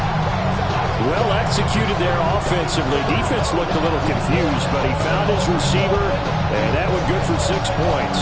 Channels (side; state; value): both; identical; correlation 1.00